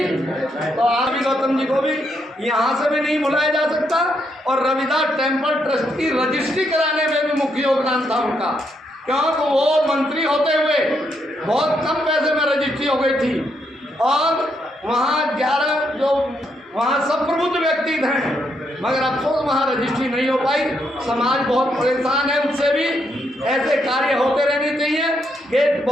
तो रवि गौतम जी को भी यहाँ से भी नहीं भुलाया जा सकता। और रविदास टेम्पल ट्रस्ट की रजिस्ट्री कराने में भी मुख्य योगदान था उनका, क्योंकि वो मंत्री होते हुए बहुत कम पैसे में रजिस्ट्री हो गई थी। और वहाँ 11 जो वहाँ सब प्रबुद्ध व्यक्ति थे, मगर अफसोस वहाँ रजिस्ट्री नहीं हो पाई। समाज बहुत परेशान है उससे भी। ऐसे कार्य होते रहने चाहिए। ये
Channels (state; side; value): normal; both; correlation 0.77